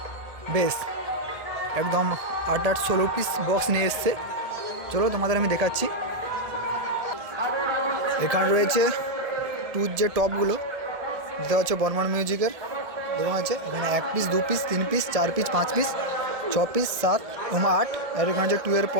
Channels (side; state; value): left; late; 1.7 ms